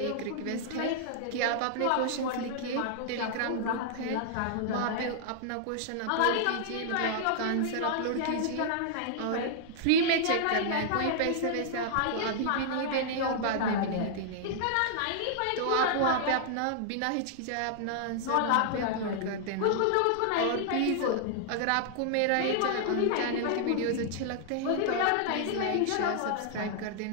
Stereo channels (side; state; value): both; different; correlation -0.01